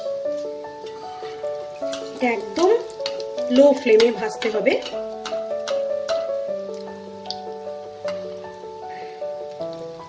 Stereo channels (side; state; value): both; identical; correlation 1.00